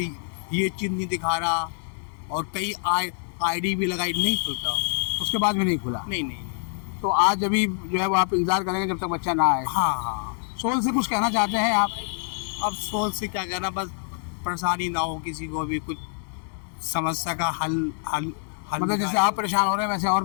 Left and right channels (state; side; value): silent; right; 61 dB below the other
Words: चीज़ नहीं दिखा रहा, और कई ID भी लगाई, नहीं खुलता। उसके बाद भी नहीं खुला? नहीं नहीं नहीं। तो आज अभी जो है वो आप इंतजार करेंगे जब तक बच्चा ना आए? हाँ हाँ। सोल से कुछ कहना चाहते हैं आप? अब सोच से क्या कहना, बस परेशानी ना हो किसी को भी, कुछ समस्या का हल मतलब जैसे आप परेशान हो रहे हैं वैसे